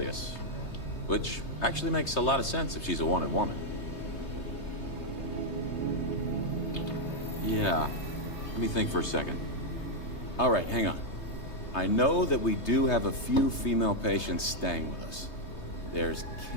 Which actually makes a lot of sense if she's a wanted woman. Yeah. Let me think for a second. All right, hang on. I know that we do have a few female patients staying with us. There's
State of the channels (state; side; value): late; right; 3.2 ms